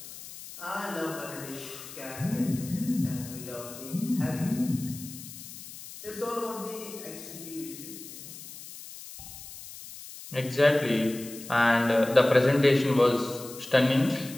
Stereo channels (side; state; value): left; noise; hiss, 14 dB below the sound